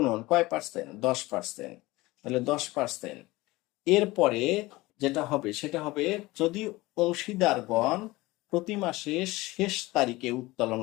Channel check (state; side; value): quieter; right; 20.2 dB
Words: কয় পার্সেন্ট? 10%। তাহলে 10%। এরপরে যেটা হবে সেটা হবে, যদি অংশীদারগণ প্রতি মাসে শেষ তারিখে উত্তোলন